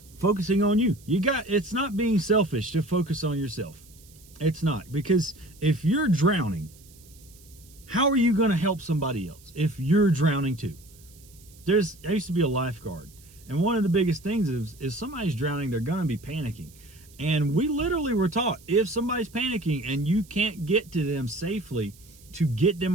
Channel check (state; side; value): noise; right; hiss, 25 dB below the sound